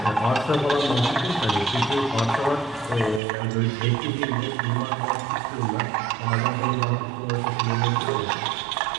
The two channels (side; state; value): left; drops out; at 3.2 s